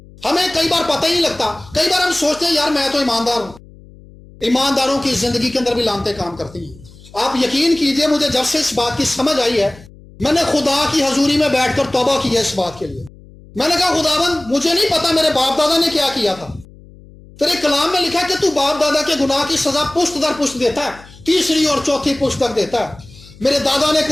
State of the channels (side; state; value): left; noise; hum, 22 dB below the sound